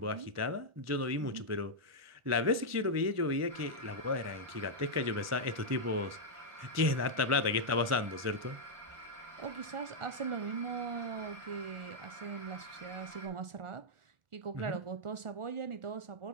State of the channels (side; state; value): left; late; 1.4 ms